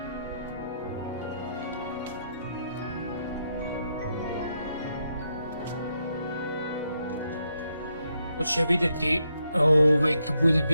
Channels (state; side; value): inverted; both; correlation -0.80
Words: To će vidjeti kad budem